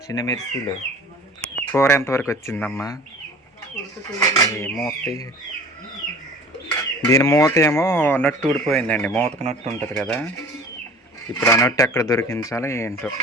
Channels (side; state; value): both; normal; correlation 0.44